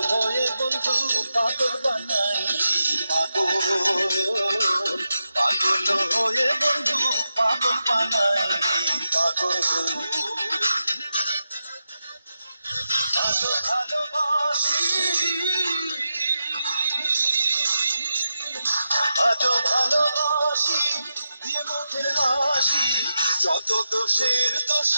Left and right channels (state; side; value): inverted; both; correlation -0.88